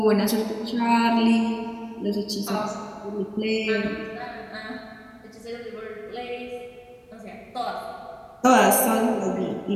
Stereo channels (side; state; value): both; identical; correlation 1.00